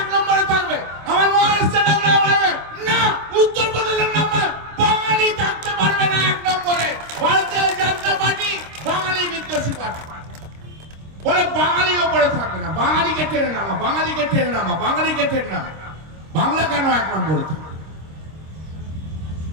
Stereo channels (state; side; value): late; left; 26 ms